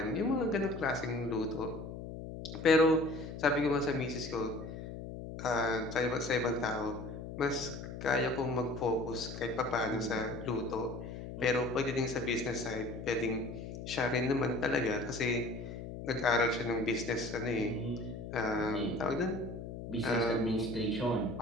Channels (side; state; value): left; noise; hum, 9 dB below the sound